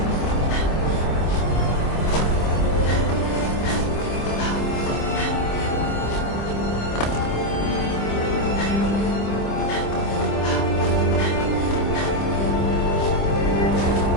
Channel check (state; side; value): late; right; 25 ms